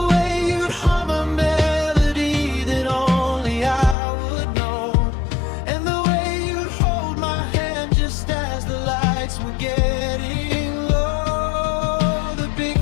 way you'd hum a melody that only I would know, and the way you'd hold my hand just as the lights were getting low. The big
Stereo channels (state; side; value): drops out; right; at 4.0 s